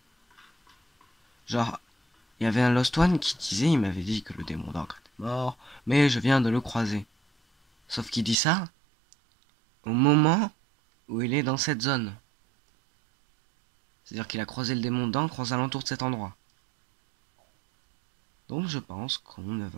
Genre, il y avait un Lost One qui disait, il m'avait dit que le démon d'encre était mort, mais je viens de le croiser. Sauf qu'il dit ça au moment où il est dans cette zone. C'est-à-dire qu'il a croisé le démon d'encre aux alentours de cet endroit. Donc je pense qu'on ne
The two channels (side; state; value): left; drops out; at 8.3 s